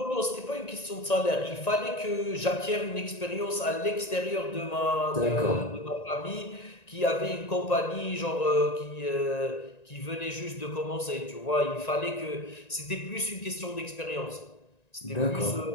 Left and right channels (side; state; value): right; late; 1.9 ms